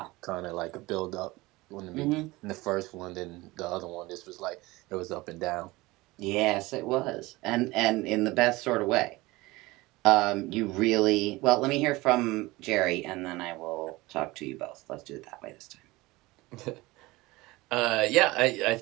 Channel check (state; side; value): quieter; left; 20.9 dB